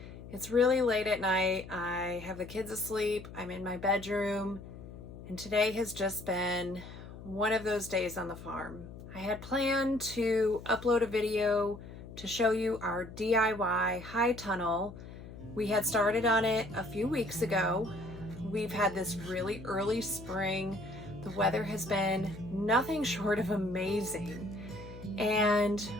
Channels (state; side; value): noise; left; hum, 14 dB below the sound